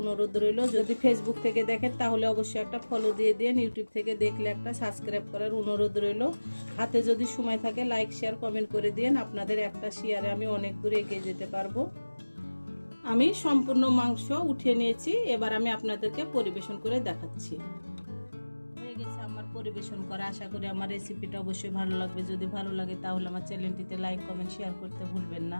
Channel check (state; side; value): inverted; both; correlation -1.00